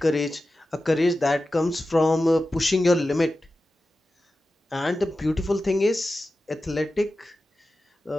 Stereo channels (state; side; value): normal; both; correlation 0.93